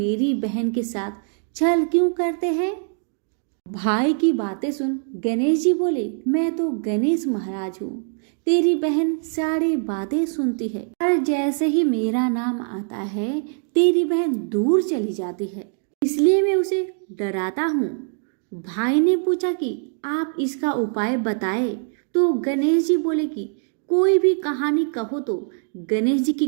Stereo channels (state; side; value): silent; left; 56 dB below the other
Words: बहन के साथ छल क्यों करते हैं। भाई की बातें सुन गणेश जी बोले, मैं तो गणेश महाराज हूँ, तेरी बहन सारी बातें सुनती है, पर जैसे ही मेरा नाम आता है तेरी बहन दूर चली जाती है, इसलिए मैं उसे डराता हूँ। भाई ने पूछा कि आप इसका उपाय बताए तो गणेश जी बोले कि कोई भी कहानी कहो तो गणेश जी